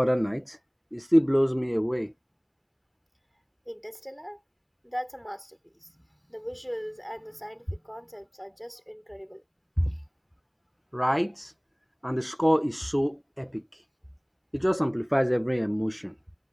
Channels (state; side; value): identical; both; correlation 1.00